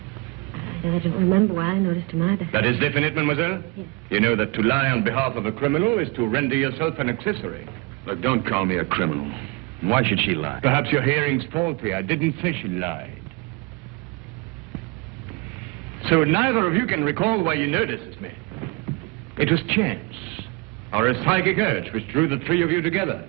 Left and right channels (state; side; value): quieter; left; 25.6 dB